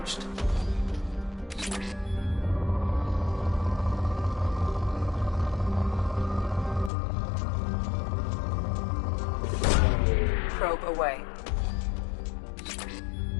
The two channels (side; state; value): right; drops out; at 6.9 s